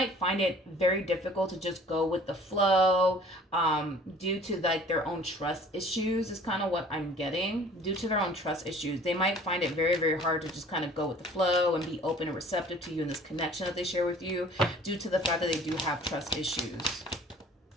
find it very difficult to just go with the flow due to like their own trust issues is kind of what I'm getting. Due to their own trust issues, they might find it very, very hard to just kind of go with the flow and be open and receptive to you in this connection that they share with you due to the fact that they do have trust issues.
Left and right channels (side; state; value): both; normal; correlation 0.51